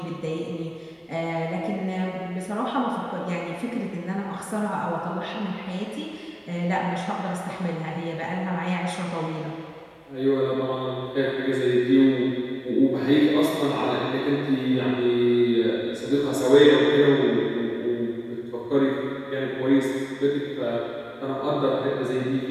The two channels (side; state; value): both; identical; correlation 1.00